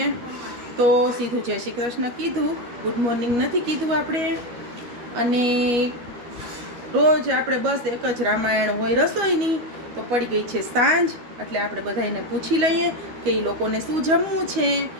તો સીધું જય શ્રી કૃષ્ણ કીધું, ગુડ મોર્નિંગ નથી કીધું આપણે। અને રોજ આપણે બસ એક જ રામાયણ હોય રસોઈની, તો પડી ગઈ છે સાંજ, એટલે આપણે બધાને પૂછી લઈએ કે એ લોકોને શું જમવું છે,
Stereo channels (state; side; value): late; left; 12 ms